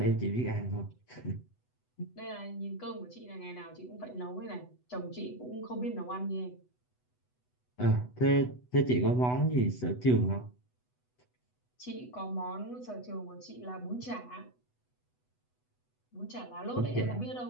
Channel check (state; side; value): late; right; 8.1 ms